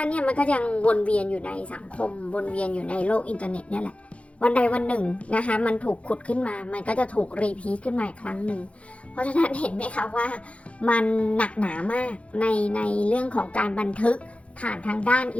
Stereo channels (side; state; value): right; late; 0.063 ms